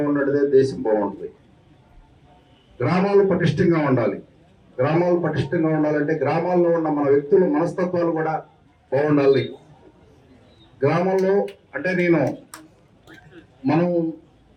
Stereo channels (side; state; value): both; identical; correlation 1.00